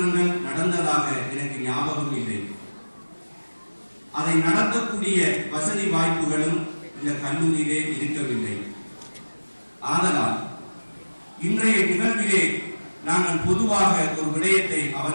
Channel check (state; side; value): inverted; both; correlation -1.00